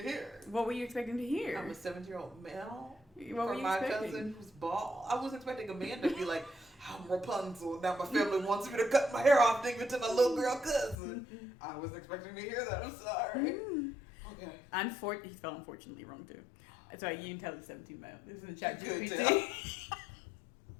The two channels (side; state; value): right; drops out; at 11.0 s